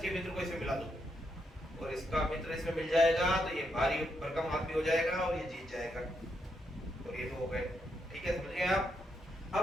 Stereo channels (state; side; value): normal; both; correlation 0.80